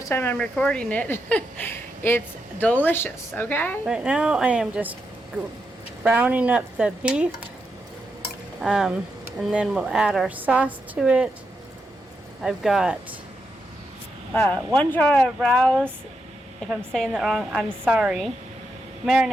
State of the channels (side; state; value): both; normal; correlation 0.84